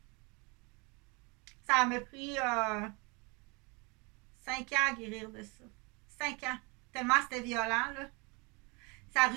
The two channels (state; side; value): quieter; left; 29.0 dB